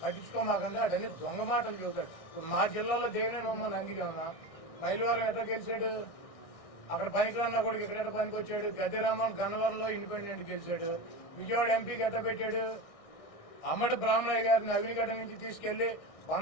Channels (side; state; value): right; late; 1.6 ms